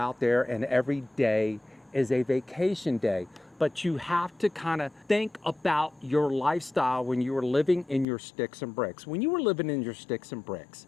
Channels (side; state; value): right; drops out; at 8.1 s